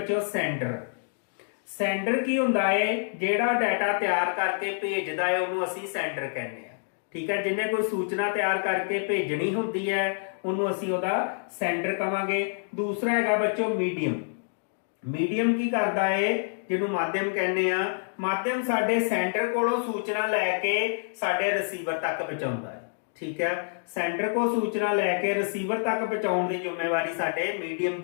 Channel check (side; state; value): right; silent; digital silence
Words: ਸੈਂਡਰ। ਸੈਂਡਰ ਕੀ ਹੁੰਦਾ ਹੈ, ਜਿਹੜਾ ਡਾਟਾ ਤਿਆਰ ਕਰਕੇ ਭੇਜਦਾ ਹੈ ਉਹਨੂੰ ਅਸੀਂ ਸੈਂਡਰ ਕਹਿੰਦੇ ਆ, ਠੀਕ ਹੈ। ਜਿਹਨੇ ਕੋਈ ਸੂਚਨਾ ਤਿਆਰ ਕਰਕੇ ਭੇਜਣੀ ਹੁੰਦੀ ਹੈ ਉਹਨੂੰ ਅਸੀਂ ਉਹਦਾ ਸੈਂਡਰ ਕਵਾਂਗੇ। ਦੂਸਰਾ ਹੈਗਾ ਬੱਚੋ ਮੀਡੀਅਮ। ਮੀਡੀਅਮ ਕੀ ਕਰਦਾ ਹੈ, ਜਿਹਨੂੰ ਮਾਧਿਅਮ ਕਹਿੰਦੇ ਆ। ਮਾਧਿਅਮ ਸਾਡੇ ਸੈਂਡਰ ਕੋਲੋਂ ਸੂਚਨਾ ਲੈ ਕੇ ਸਾਡੇ ਰਿਸੀਵਰ ਤੱਕ ਪਹੁੰਚਾਉਂਦਾ ਹੈ, ਠੀਕ ਹੈ। ਸੈਂਡਰ ਕੋਲ ਸੂਚਨਾ ਲੈ ਕੇ ਰਿਸੀਵਰ ਤੱਕ ਪਹੁੰਚਾਉਣ ਦੀ ਜ਼ਿੰਮੇਵਾਰੀ ਸਾਡੇ ਮੀਡੀਅਮ